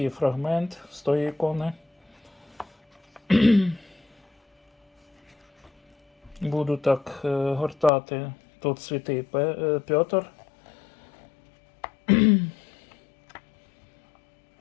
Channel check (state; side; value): drops out; right; at 7.9 s